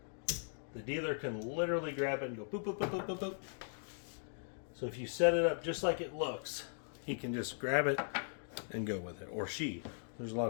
the dealer can literally grab it and go boop, boop, boop, boop, boop, boop. So if you set it up just like it looks, he can just grab it and go with it. Or she. There's a lot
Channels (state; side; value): silent; right; digital silence